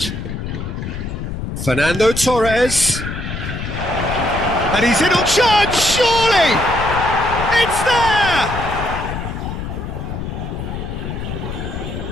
Fernando Torres. And he's in on charge, surely! It's there!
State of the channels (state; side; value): noise; left; rumble, 6 dB below the sound